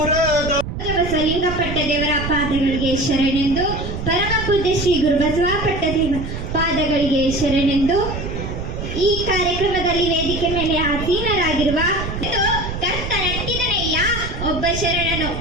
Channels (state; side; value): noise; right; rumble, 6 dB below the sound